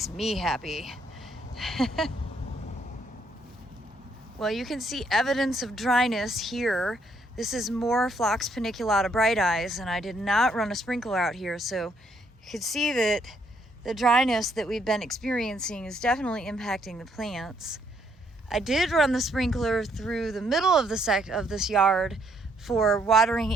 me happy. Well, you can see evidence of dryness here. This is more Phlox paniculata bright eyes, and I did not run a sprinkler out here, so you can see that the dryness that we've been experiencing is definitely impacting the plants. I did run the sprinkler through the middle of this yard for watering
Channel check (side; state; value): both; normal; correlation 0.71